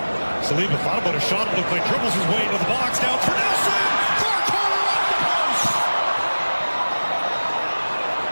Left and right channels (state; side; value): inverted; both; correlation -1.00